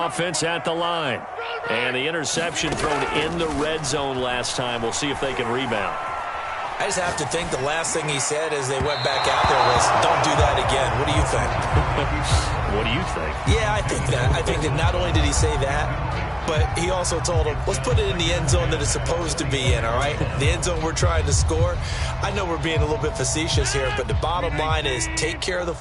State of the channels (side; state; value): both; identical; correlation 1.00